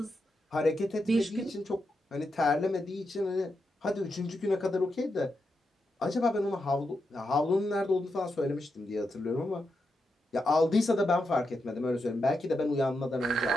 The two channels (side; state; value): both; normal; correlation 0.85